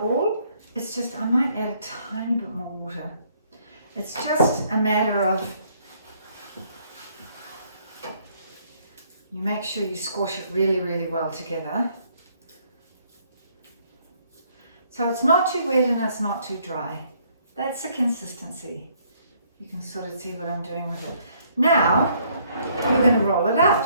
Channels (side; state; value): both; inverted; correlation -0.66